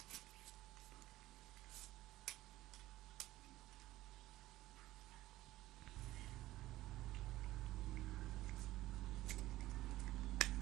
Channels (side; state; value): left; quieter; 16.4 dB